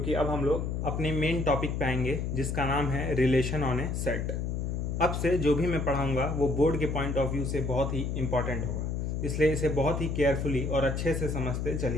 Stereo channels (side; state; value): left; noise; hum, 2 dB below the sound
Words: अब हम लोग अपने मेन टॉपिक पे आएंगे जिसका नाम है रिलेशन ऑन ए सेट। अब से जो भी मैं पढ़ाऊँगा वो बोर्ड के पॉइंट ऑफ व्यू से बहुत ही इंपॉर्टेंट होगा, इसलिए इसे बहुत ही केयरफुली और अच्छे से समझते